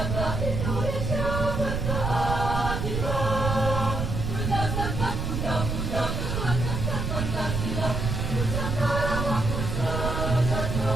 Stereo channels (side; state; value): right; noise; rumble, 2 dB below the sound